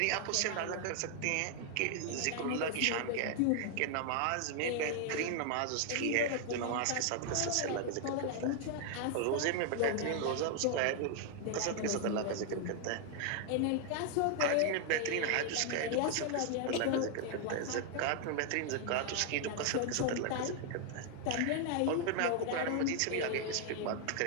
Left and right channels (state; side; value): different; both; correlation 0.00